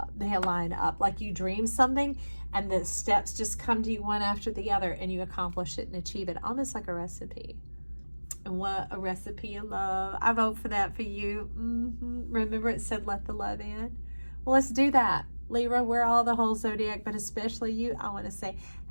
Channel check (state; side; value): inverted; both; correlation -1.00